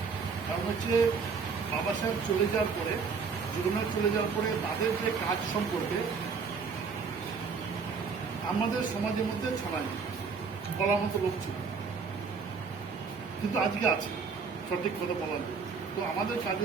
কারণ হচ্ছে বাবা সাহেব চলে যাওয়ার পরে, জীবনের চলে যাওয়ার পরে তাদের যে কাজ সম্পর্কে আমাদের সমাজের মধ্যে ছড়ায়নি, বলার মতো লোক ছিল, কিন্তু আজকে আছে সঠিক কথা বলার জন্য। তো আমাদের কাজ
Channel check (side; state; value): left; quieter; 5.3 dB